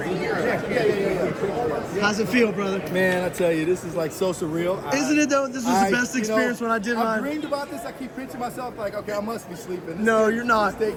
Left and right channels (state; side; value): identical; both; correlation 1.00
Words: here. How's it feel, brother? Man, I tell you, this is like so surreal. Isn't it though? This was the best experience when I did mine. I dreamed about this. I keep pinching myself like, okay, I must be sleeping. No, you're not.